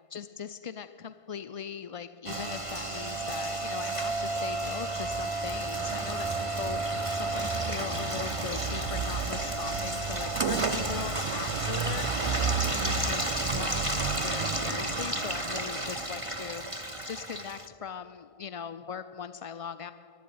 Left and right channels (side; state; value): left; late; 1.5 ms